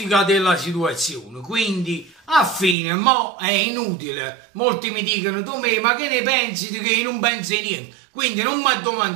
della situazione, quindi a fine mo è inutile. Molti mi dicono: tu ma che ne pensi? Che io non penso niente, quindi non mi ha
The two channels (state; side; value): drops out; left; at 2.8 s